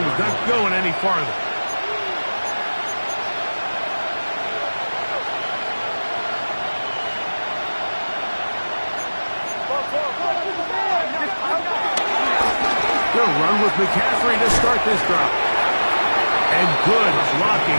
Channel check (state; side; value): inverted; both; correlation -1.00